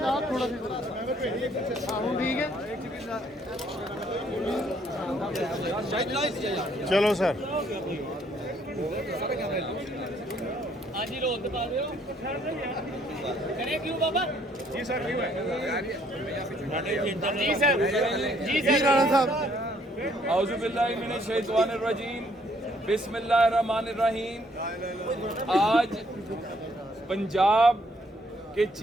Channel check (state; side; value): normal; both; correlation 0.66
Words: आप थोड़ा ठीक है, चलो सर। क्यों बाबा? जी सर, क्यों है? जी सर, जी सर। राणा साहब औज़ु बिल्लाहि मिनश शैतानिर रजीम, बिस्मिल्लाहिर्रहमानिर रहीम। आज पंजाब के